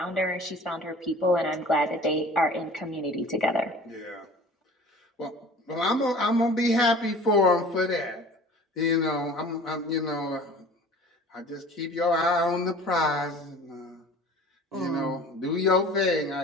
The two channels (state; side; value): normal; both; correlation 0.44